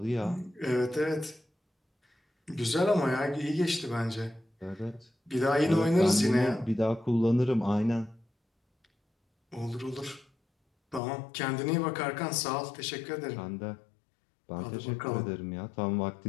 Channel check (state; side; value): drops out; right; at 11.0 s